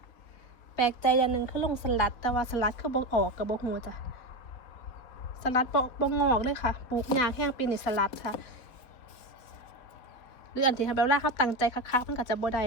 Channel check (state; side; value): late; right; 4.0 ms